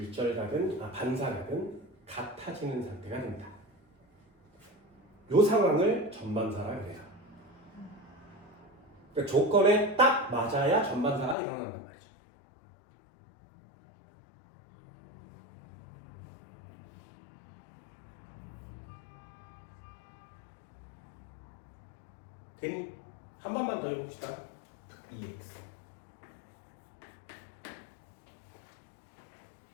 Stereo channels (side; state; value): right; drops out; at 11.4 s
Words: 반사각은 같아지는 상태가 됩니다. 이 상황을 전반사라 그래요. 그러니까 조건에 딱 맞아야 전반사가 일어난단 말이죠. 되니? 한 번만 더 해봅시다. EX.